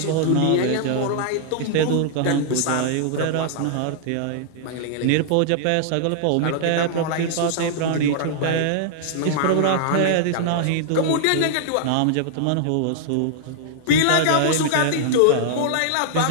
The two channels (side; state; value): both; different; correlation -0.01